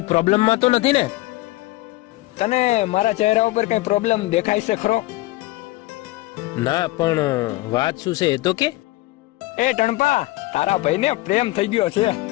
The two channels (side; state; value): right; quieter; 19.3 dB